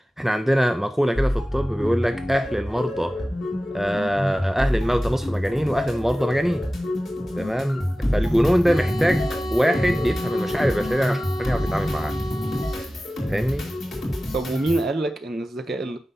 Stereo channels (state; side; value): normal; both; correlation 0.96